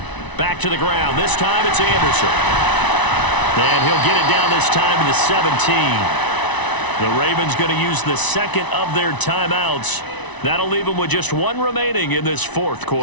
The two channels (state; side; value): late; right; 1.0 ms